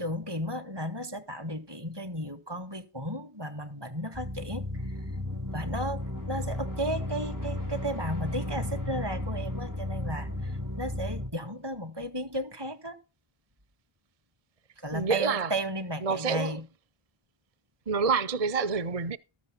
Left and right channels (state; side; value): late; left; 1.2 ms